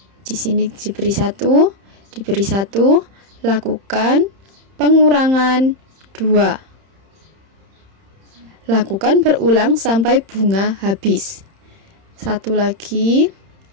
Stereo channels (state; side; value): late; left; 31 ms